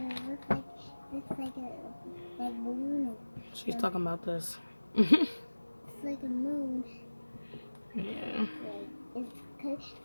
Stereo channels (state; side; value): inverted; both; correlation -1.00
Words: it looks like a balloon. She's talking about this. It's like a moon. Yeah.